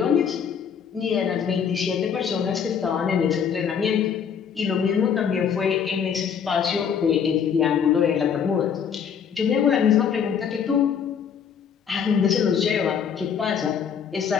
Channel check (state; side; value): quieter; right; 7.4 dB